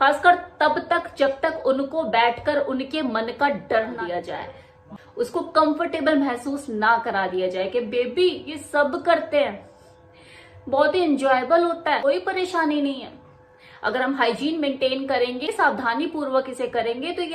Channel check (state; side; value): identical; both; correlation 1.00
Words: खासकर तब तक जब तक उनको बैठकर उनके मन का डर ना दिया जाए, उसको कंफर्टेबल महसूस ना करा दिया जाए कि बेबी ये सब करते हैं, बहुत ही इंजॉयबल होता है, कोई परेशानी नहीं है। अगर हम हाइजीन मेंटेन करेंगे, सावधानी पूर्वक इसे करेंगे, तो ये